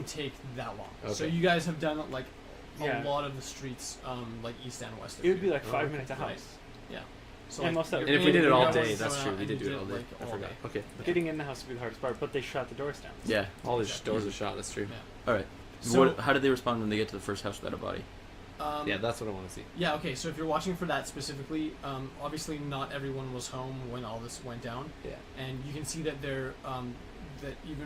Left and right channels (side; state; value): both; identical; correlation 1.00